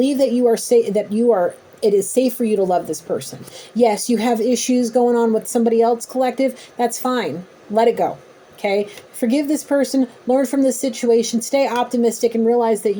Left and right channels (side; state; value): both; identical; correlation 1.00